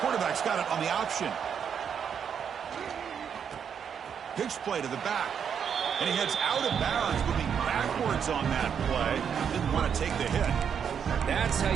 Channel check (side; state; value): left; quieter; 7.6 dB